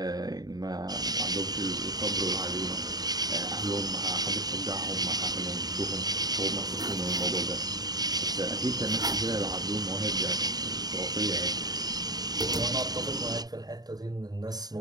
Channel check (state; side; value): late; left; 0.19 ms